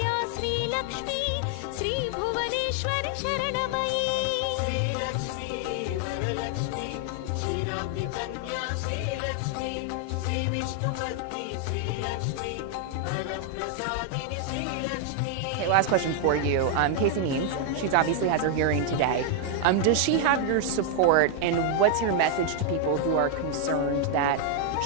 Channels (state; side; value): different; both; correlation 0.00